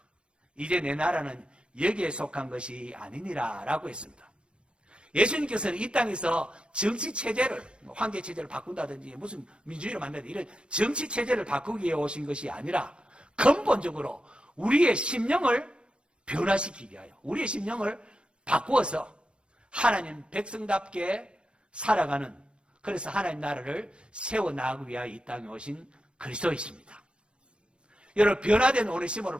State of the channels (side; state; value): left; late; 0.057 ms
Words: 이제 내 나라는 여기에 속한 것이 아니니라 라고 했습니다. 예수님께서는 이 땅에서 정치체제를, 황제체제를 바꾼다든지 무슨 민주주의를 만든다든지 이런 정치체제를 바꾸기 위해 오신 것이 아니라 근본적으로 우리의 심령을 변화시키기 위하여, 우리의 심령을 바꾸어서 하나님 백성답게 살아가는, 그래서 하나님 나라를 세워나가기 위하여 이 땅에 오신 그리스도이십니다. 여러분, 변화된 오네시모를